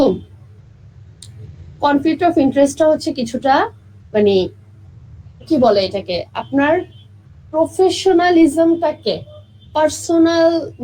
কনফ্লিক্ট অফ ইন্টারেস্টটা হচ্ছে কিছুটা মানে কি বলে এটাকে, আপনার প্রফেশনালিজমটাকে পার্সোনাল,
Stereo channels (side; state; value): both; identical; correlation 1.00